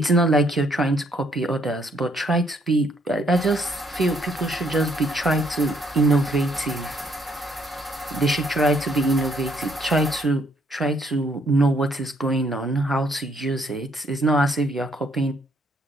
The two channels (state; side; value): normal; both; correlation 0.68